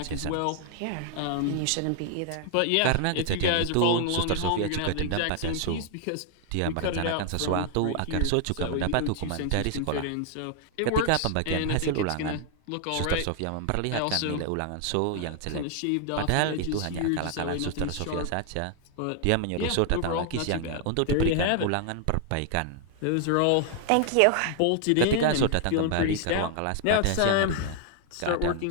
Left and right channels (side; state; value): both; different; correlation 0.00